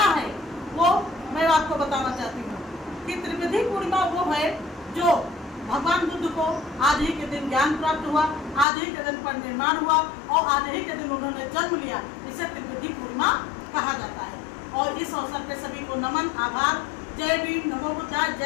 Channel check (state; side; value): drops out; right; at 8.7 s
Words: है वो मैं आपको बताना चाहती हूँ कि त्रिवेदी पूर्णिमा वो है जो भगवान बुद्ध को आज ही के दिन ज्ञान प्राप्त हुआ, आज ही के दिन पर निर्माण हुआ और आज ही के दिन उन्होंने जन्म लिया। इसे त्रिवेदी पूर्णिमा कहा जाता है। और इस अवसर पे सभी को नमन, आभार। जय भीम, नमो बुद्धाय,